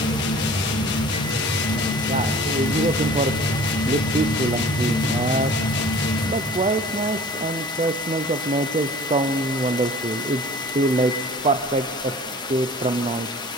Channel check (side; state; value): both; normal; correlation 0.46